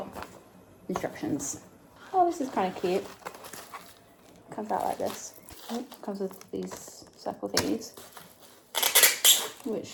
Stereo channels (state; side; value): identical; both; correlation 1.00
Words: instructions. Oh, this is kind of cute. Comes out like this. Oh, comes with these circle thingies,